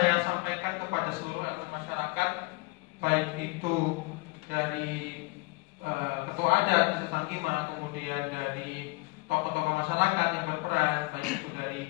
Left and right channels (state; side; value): quieter; right; 25.6 dB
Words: sampaikan kepada seluruh elemen masyarakat, baik itu dari ketua adat Desa Sangkima, kemudian dari tokoh-tokoh masyarakat yang berperan, baik itu